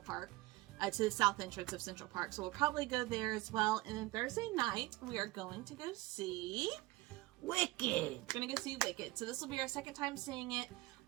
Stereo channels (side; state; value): left; quieter; 19.8 dB